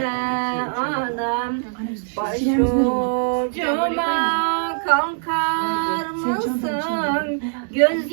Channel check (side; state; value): left; silent; digital silence